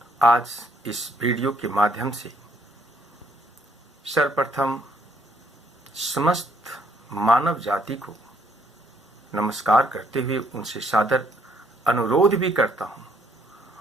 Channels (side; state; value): both; normal; correlation 0.69